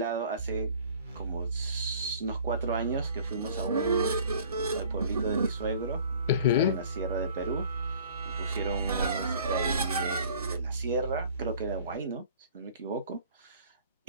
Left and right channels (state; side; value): inverted; both; correlation -0.50